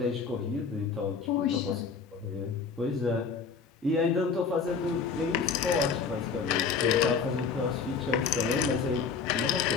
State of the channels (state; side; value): quieter; right; 5.5 dB